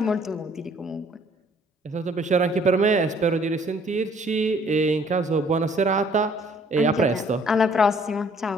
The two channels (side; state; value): both; normal; correlation 0.60